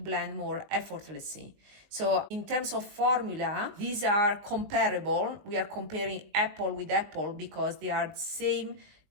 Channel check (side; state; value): left; late; 19 ms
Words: more effortlessly. So in terms of formula, these are comparable. We are comparing apple with apple because they are the same